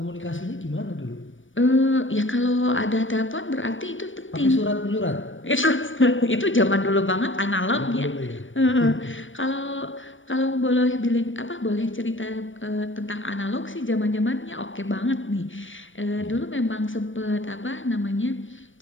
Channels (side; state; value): right; late; 0.56 ms